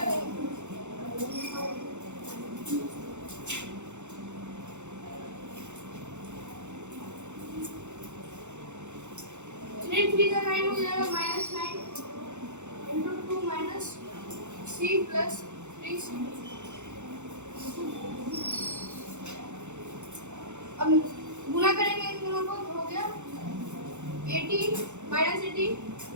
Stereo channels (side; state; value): left; late; 0.83 ms